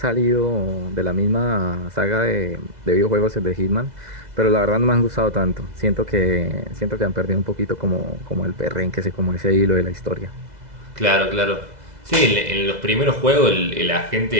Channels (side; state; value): left; late; 2.0 ms